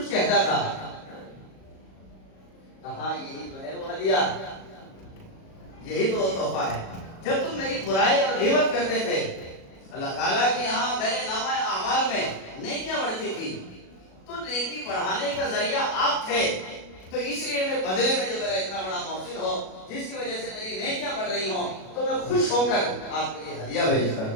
کہتا تھا. کہا یہی تو ہے وہ ہدیہ، یہی تو وہ تحفہ ہے. جب تم میری برائی اور غیبت کرتے تھے، اللہ تعالیٰ کے یہاں میرے نامہ اعمال میں نیکیاں بڑھتی تھی، تو نیکی بڑھانے کا ذریعہ آپ تھے. تو اس لیے میں بدلے میں جو میرا اتنا بڑا محسن ہو، جس کی وجہ سے میری نیکیاں بڑھ رہی ہوں، تو میں خوش ہو کر آپ کے لیے ہدیہ بھیجتا ہوں.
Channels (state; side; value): late; right; 37 ms